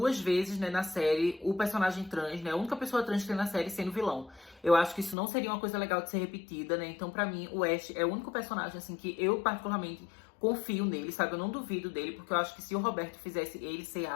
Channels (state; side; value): drops out; right; at 5.2 s